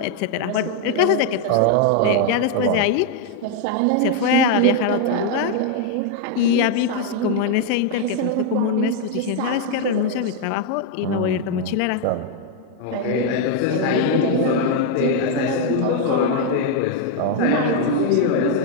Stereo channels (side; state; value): both; different; correlation 0.00